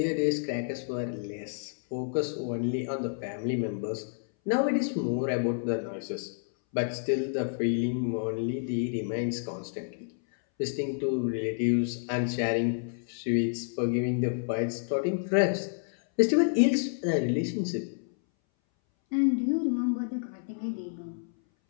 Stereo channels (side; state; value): right; silent; 58 dB below the other